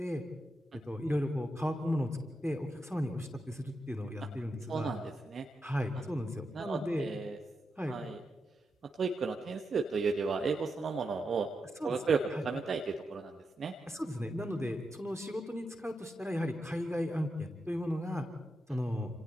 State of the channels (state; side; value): normal; both; correlation 0.86